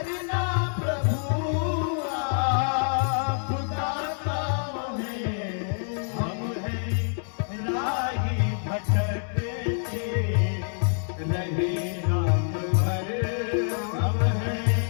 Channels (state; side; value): silent; right; 60 dB below the other